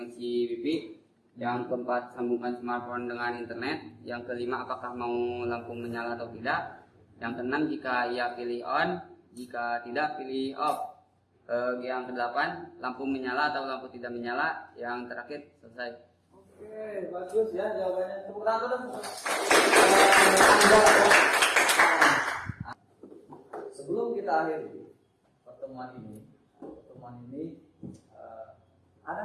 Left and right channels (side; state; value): both; identical; correlation 1.00